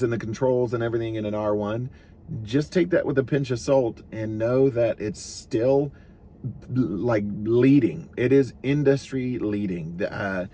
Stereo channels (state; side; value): identical; both; correlation 1.00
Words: and the controls and everything in an R1, just take that with a pinch of salt and know that it's still like leading. It is industry leading.